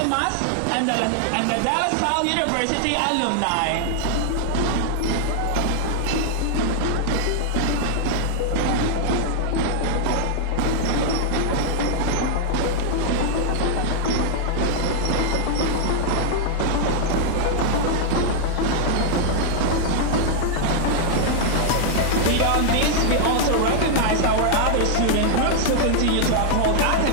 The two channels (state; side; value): different; both; correlation -0.01